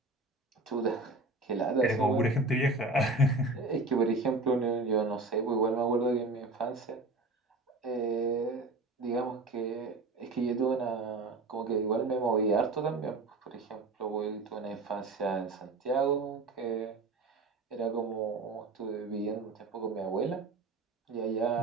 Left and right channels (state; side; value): quieter; left; 3.2 dB